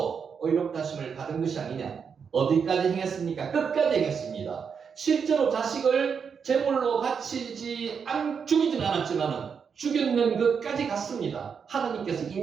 의롭다 하심을 받은 것이 아니냐. 어디까지 행했습니까? 끝까지 행했습니다. 실제로 자식을 제물로 죽이진 않았지만 죽였는 것까지 갔습니다. 하나님께서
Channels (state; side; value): quieter; left; 6.4 dB